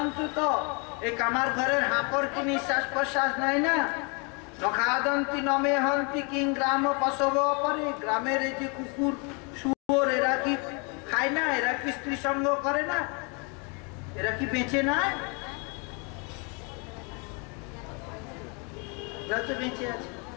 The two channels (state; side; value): quieter; right; 33.7 dB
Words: এই কামার ঘরের হাঁপড় কি নিঃশ্বাস প্রশ্বাস নাই না? নখাদন্তি নমে হন্তি কিং গ্রাম পশব অপরে, গ্রামের এই যে কুকুর শুয়োর এরা কি খায় না? এরা কি স্ত্রী সঙ্গ করে না? এরা কি বেঁচে নাই? এরা তো বেঁচে আছে।